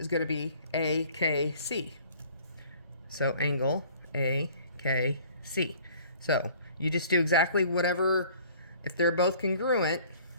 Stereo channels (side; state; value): both; inverted; correlation -0.53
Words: going to be AKC. So angle AKC. So you just do exactly whatever, if they're both congruent,